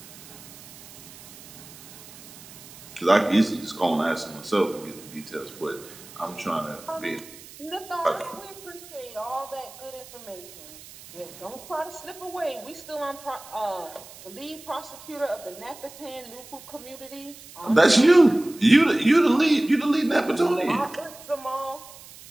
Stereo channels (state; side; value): noise; right; hiss, 18 dB below the sound